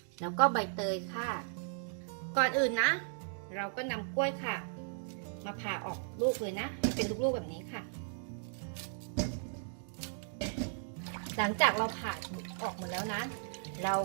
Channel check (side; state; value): left; silent; digital silence